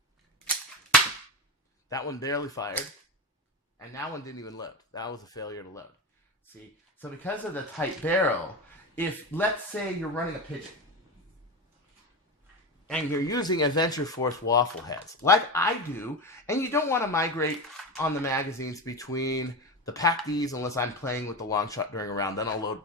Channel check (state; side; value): normal; both; correlation 0.20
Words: That one barely fired. And that one didn't even load. That was a failure to load. See? So because of the tight barrel, if, let's say you're running a pigeon, and you're using Adventure Force waffle heads, like I do, and you don't want to migrate on the magazines between the Pack Ds unless I'm playing with the long shot during a round. Then I'll load